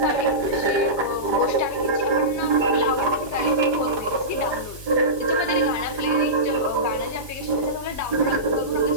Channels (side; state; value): left; late; 1.2 ms